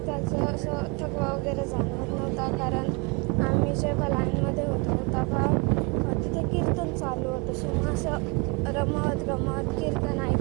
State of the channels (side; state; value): left; quieter; 30.0 dB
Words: असं थकवा वगैरे जाणवत नव्हता, कारण आम्ही जेव्हा लाईनमध्ये होतो तेव्हा तिथे कीर्तन चालू होतं. सो मग असं रमत गमत कीर्तन